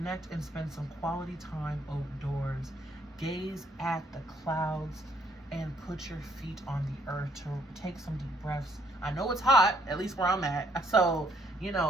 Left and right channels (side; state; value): both; normal; correlation 0.67